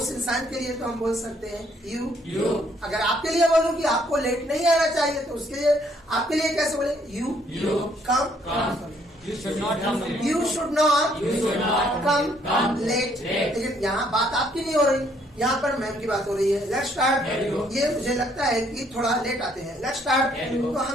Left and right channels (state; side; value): normal; both; correlation 0.67